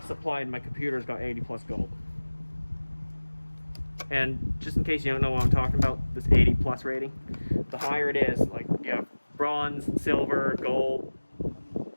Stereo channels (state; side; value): inverted; both; correlation -1.00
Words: supply in my computer's got 80 plus gold. And just in case you don't know what I'm talking about, this 80 plus rating, the higher it is, like you have bronze, silver, gold,